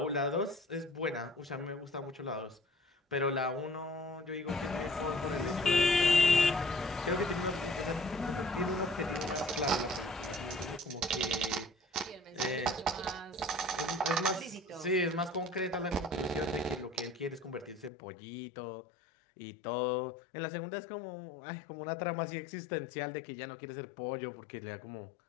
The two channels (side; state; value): right; drops out; at 17.9 s